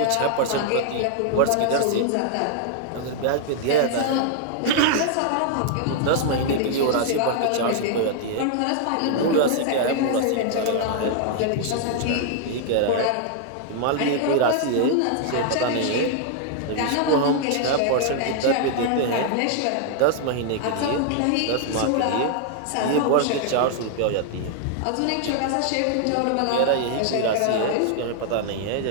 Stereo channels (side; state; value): both; different; correlation 0.00